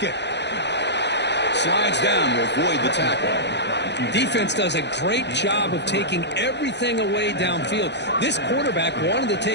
Slides down to avoid the tackle. Defense does a great job of taking everything away downfield. This quarterback wanted to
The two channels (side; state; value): right; late; 0.50 ms